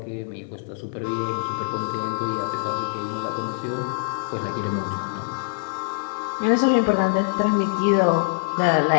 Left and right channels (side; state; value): right; silent; digital silence